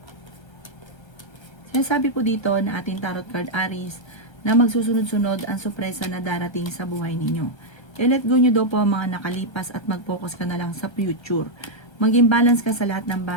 Sinasabi po dito na ating tarot card Aries na magsusunod-sunod ang sorpresa na darating sa buhay ninyo. I-let go nyo daw po ang mga nakalipas at mag-focus ka na lang sa future. Maging balance ka sa lahat ng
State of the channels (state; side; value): late; right; 1.3 ms